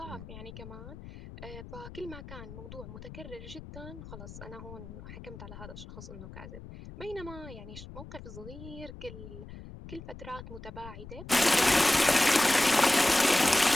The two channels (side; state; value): left; noise; rumble, 14 dB below the sound